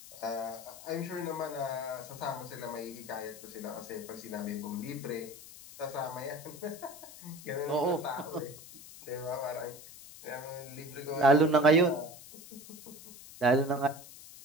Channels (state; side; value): noise; left; hiss, 16 dB below the sound